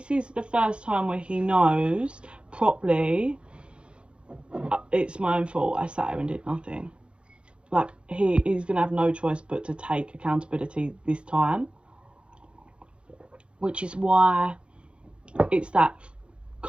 is the first time where he knows properly, it's my own fault, I sat here and did nothing. Like, he's going to have no choice but to take accountability this time. Which is why it's that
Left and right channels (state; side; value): late; left; 0.058 ms